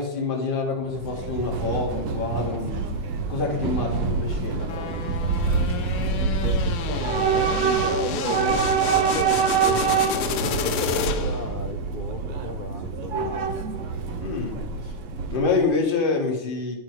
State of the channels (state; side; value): late; right; 2.5 ms